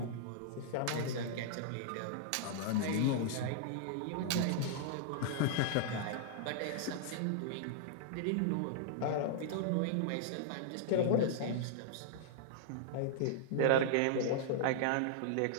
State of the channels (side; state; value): both; different; correlation -0.01